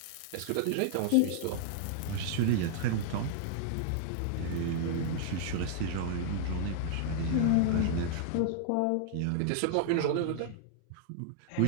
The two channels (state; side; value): different; both; correlation -0.01